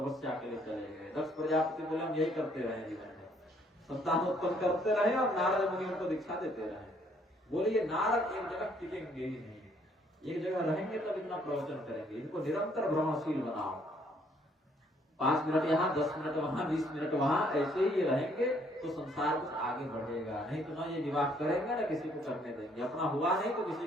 के लिए चले गए। दक्ष प्रजापति बोले हम यही करते रहे जीवन में, संतान उत्पन्न करते रहे और नारद मुनि उनको दीक्षा देते रहे। बोले ये नारद एक जगह टिकेंगे ही नहीं, एक जगह रहेंगे तब इतना प्रवचन करेंगे। इनको निरंतर भ्रमणशील बनाओ, 5 मिनट यहाँ, 10 मिनट वहां, 20 मिनट वहां, ऐसे ही रहेंगे तो संसार कुछ आगे बढ़ेगा। नहीं तो ना ये विवाह करेंगे ना किसी को करने देंगे, अपना हुआ नहीं तो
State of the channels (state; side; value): normal; both; correlation 0.65